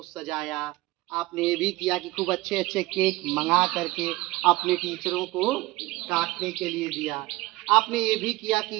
सजाया, आपने ये भी किया कि खूब अच्छे अच्छे केक मंगा करके अपने टीचरों को काटने के लिए दिया, आपने ये भी किया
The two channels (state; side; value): quieter; left; 20.0 dB